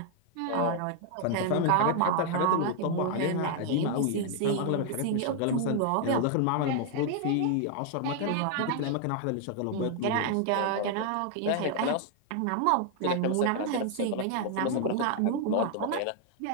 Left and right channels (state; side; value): different; both; correlation 0.00